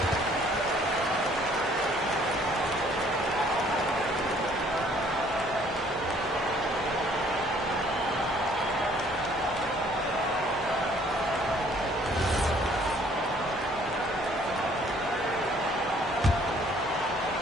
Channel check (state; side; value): normal; both; correlation 0.60